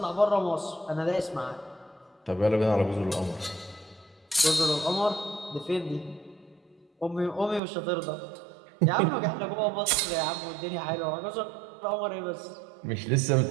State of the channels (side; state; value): left; drops out; at 7.6 s